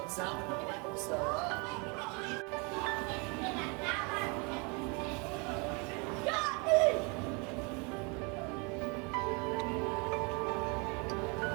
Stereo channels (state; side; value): quieter; left; 31.7 dB